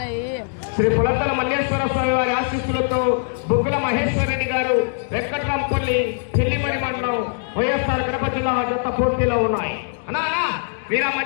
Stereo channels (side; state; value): right; silent; digital silence